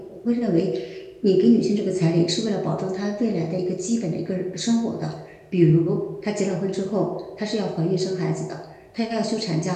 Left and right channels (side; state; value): both; identical; correlation 1.00